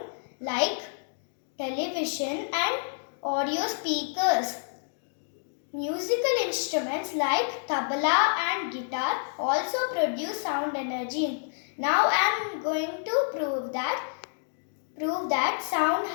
like television and audio speakers. Musical instruments like tabla and guitar also produce sound energy. Now I am going to prove that sound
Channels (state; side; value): silent; right; digital silence